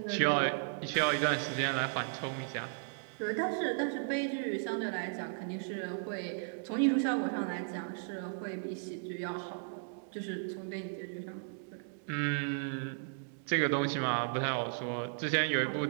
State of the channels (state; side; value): silent; left; digital silence